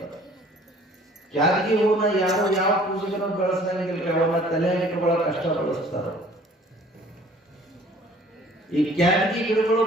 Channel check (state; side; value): normal; both; correlation 0.53